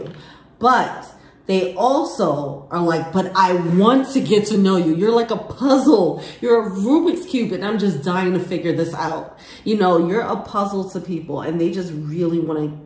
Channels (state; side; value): identical; both; correlation 1.00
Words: But they also are like, but I want to get to know you. You're like a puzzle. You're a Rubik's Cube, and I'm just dying to figure this out. You know, you're a puzzle to people, and they just really want to